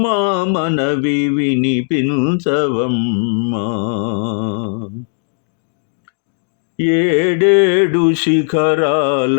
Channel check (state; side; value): silent; right; digital silence